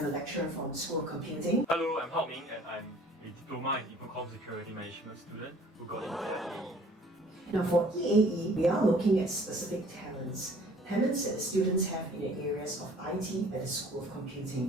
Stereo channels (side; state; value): both; normal; correlation 0.53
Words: a lecturer from School of Computing. Hello, I'm Hao Ming and I'm a Diploma in Infocom Security Management student who got into EAE. Now for EAE, we are looking at specific talents that students have in the areas of IT at the School of